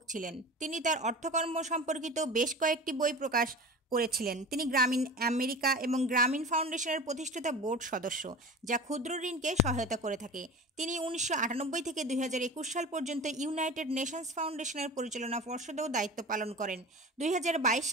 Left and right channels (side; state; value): both; normal; correlation 0.35